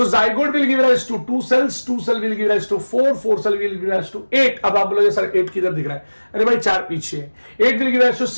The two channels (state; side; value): inverted; both; correlation -1.00